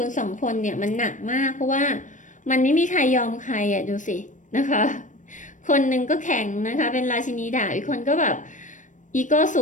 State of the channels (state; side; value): late; right; 0.37 ms